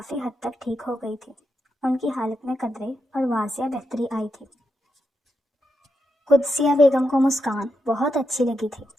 حد تک ٹھیک ہو گئی تھی۔ ان کی حالت میں قدرے اور واضح بہتری آئی تھی۔ قدسیہ بیگم کو مسکان بہت اچھی لگی تھی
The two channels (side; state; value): both; normal; correlation 0.85